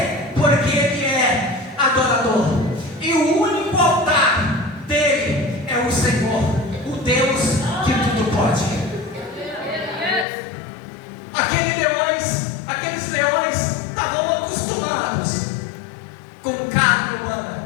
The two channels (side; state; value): right; drops out; at 10.2 s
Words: Porque ele é adorador. E o único altar dele é o Senhor, o Deus que tudo pode. Aqueles leões estavam acostumados com carne